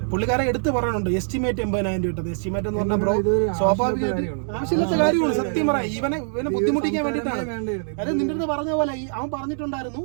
പുള്ളിക്കാരെ എടുത്ത് പറയുന്നുണ്ട് എസ്റ്റിമേറ്റ് 80,000 രൂപ. എസ്റ്റിമേറ്റ് എന്ന് പറഞ്ഞാൽ ബ്രോ സ്വാഭാവികമായിട്ട് ആവശ്യമില്ലാത്ത കാര്യമാണ്. സത്യം പറയാം, ഇവനെ ബുദ്ധിമുട്ടിക്കാൻ വേണ്ടിയിട്ടാണ്. അതായത് നിന്റെ അടുത്ത് പറഞ്ഞ പോലെ അവൻ പറഞ്ഞിട്ടുണ്ടായിരുന്നു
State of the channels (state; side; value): silent; left; digital silence